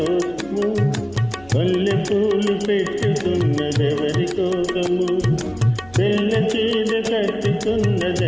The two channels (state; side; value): noise; right; hum, 24 dB below the sound